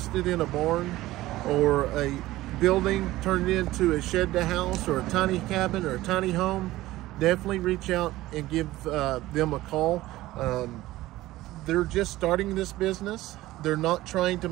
in a barn or a building turned into a shed to house or a tiny cabin or a tiny home, definitely reach out and give them a call. They're just starting this business. They're not trying to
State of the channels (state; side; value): quieter; left; 16.9 dB